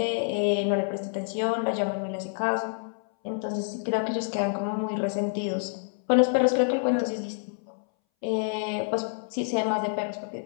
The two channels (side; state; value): right; silent; 60 dB below the other